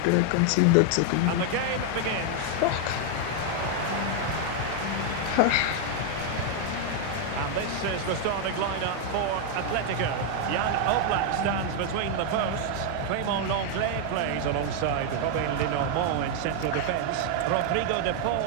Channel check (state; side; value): different; both; correlation 0.00